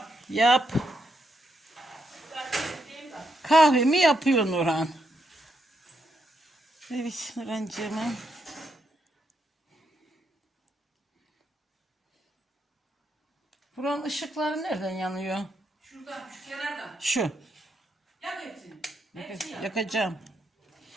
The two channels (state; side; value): normal; both; correlation 0.79